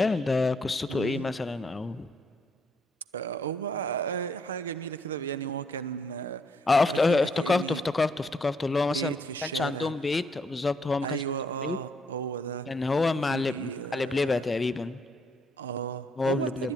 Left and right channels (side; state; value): both; normal; correlation 0.72